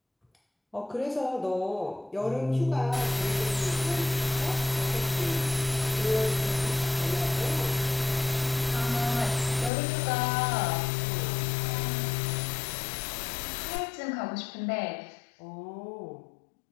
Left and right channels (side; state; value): right; drops out; at 9.7 s